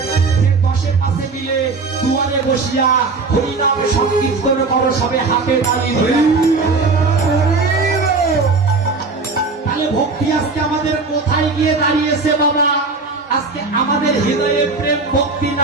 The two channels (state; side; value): quieter; left; 4.0 dB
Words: যে 10 পাশে মিলে দুয়ারে বসিয়া হরিনাম সংকীর্তন করো, সবে হাতে তালি ধরে। তাহলে ভক্তি আজকে আমাদের কোথায় গিয়ে দাঁড়িয়েছে বাবা? আজকে আমাদের হৃদয়ে প্রেম ভক্তি